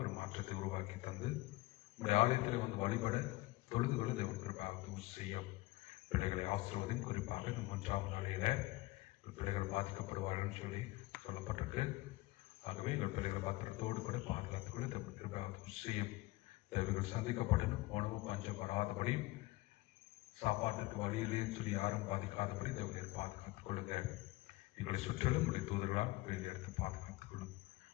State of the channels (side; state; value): right; quieter; 20.0 dB